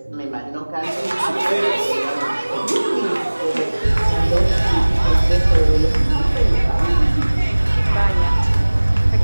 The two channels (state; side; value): inverted; both; correlation -1.00